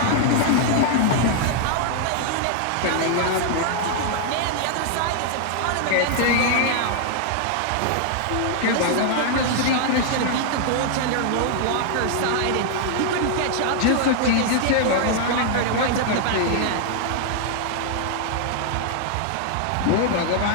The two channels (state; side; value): different; both; correlation 0.00